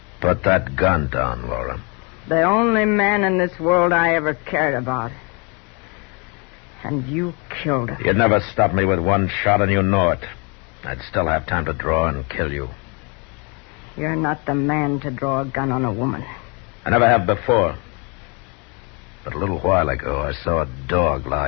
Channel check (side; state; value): right; quieter; 32.2 dB